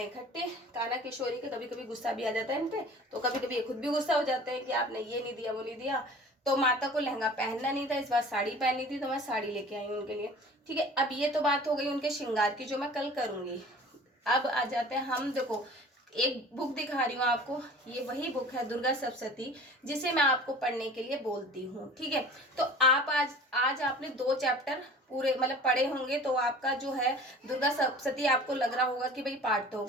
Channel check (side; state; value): both; normal; correlation 0.43